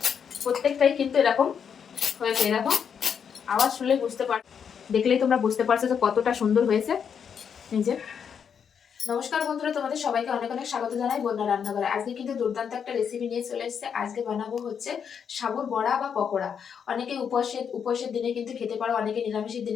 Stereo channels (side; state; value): right; quieter; 7.3 dB